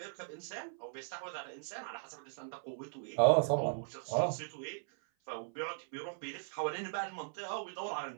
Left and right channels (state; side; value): silent; left; 52 dB below the other